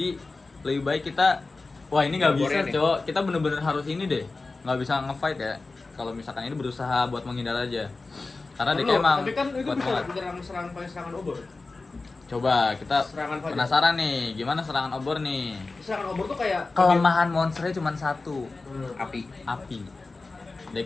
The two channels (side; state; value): right; quieter; 3.6 dB